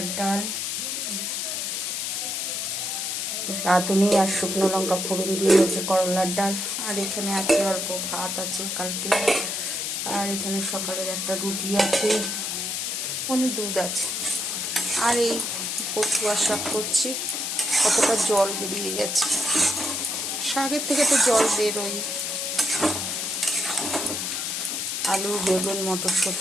ডাল, রাঁধুনি আর শুকনো লঙ্কা ফোড়ন দিয়ে হচ্ছে করলার ডাল। আর এখানে আছে অল্প ভাত আছে কালকে। আর এখানে সকালের একটা রুটি আছে, অনেক দুধ আছে। আর এই বথুয়া শাক করছি। কতটা জল বেরিয়ে গেছে, শাকের থেকে তো জল বেরোই। আলু, বেগুন,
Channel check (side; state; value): left; noise; hiss, 2 dB below the sound